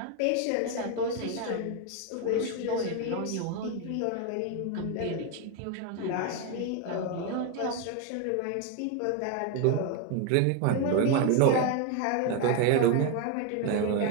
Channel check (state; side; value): different; both; correlation 0.01